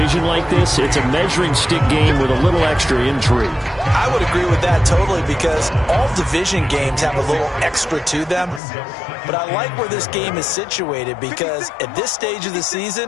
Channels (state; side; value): drops out; right; at 8.6 s